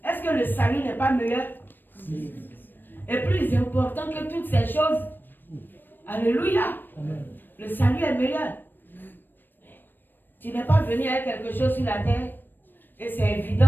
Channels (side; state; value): right; late; 0.094 ms